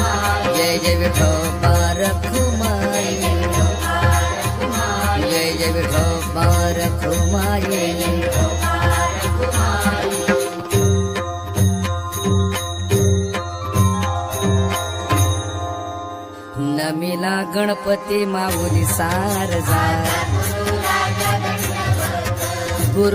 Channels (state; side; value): identical; both; correlation 1.00